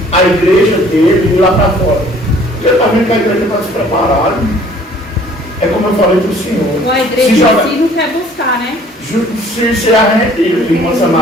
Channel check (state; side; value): normal; both; correlation 0.55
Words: a igreja dele ir lá para fora? Porque ele está vendo que a igreja está despreparada. É como eu falei para o senhor. A igreja em si não quer buscar, né? Se a gente, irmã